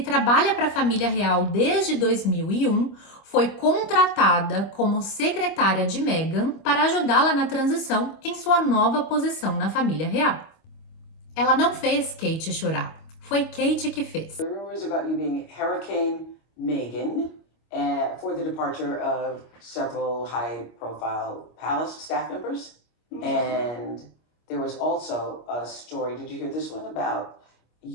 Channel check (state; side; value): late; right; 25 ms